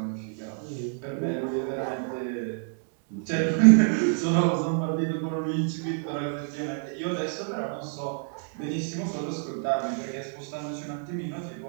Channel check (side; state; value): left; silent; 59 dB below the other